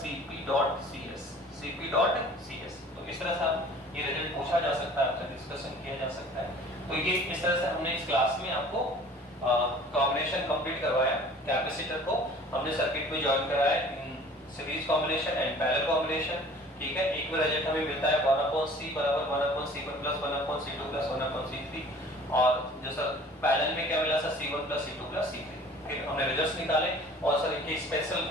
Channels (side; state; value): both; normal; correlation 0.48